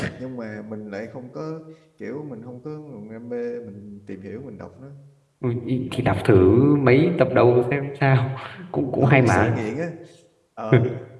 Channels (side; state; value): both; identical; correlation 1.00